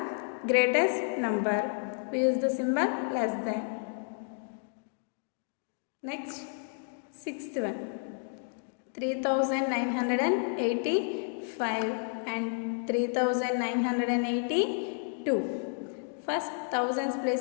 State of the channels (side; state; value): right; silent; 57 dB below the other